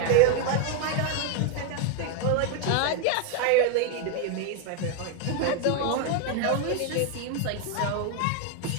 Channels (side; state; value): both; different; correlation 0.01